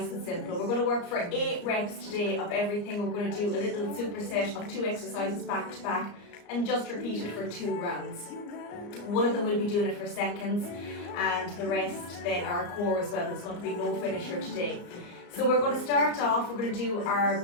and simple. We're going to work for 8 reps today of everything. We're going to do a little superset of 2 exercises back to back and just repeat it for 2 rounds. One of them will be doing it for seconds and the rest then are core as well. It's going to be no finisher today. So we're going to start off, we're going to do our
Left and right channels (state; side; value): late; right; 34 ms